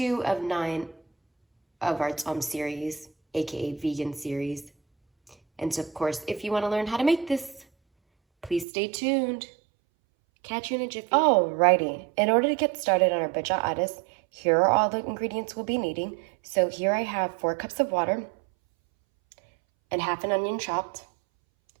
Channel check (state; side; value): drops out; left; at 8.7 s